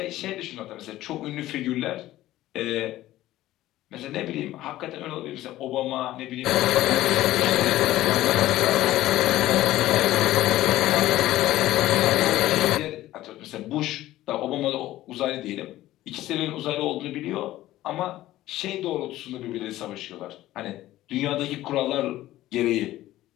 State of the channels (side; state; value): right; quieter; 15.2 dB